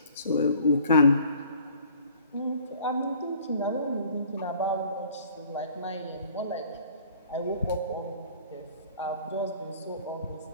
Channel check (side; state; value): both; inverted; correlation -0.53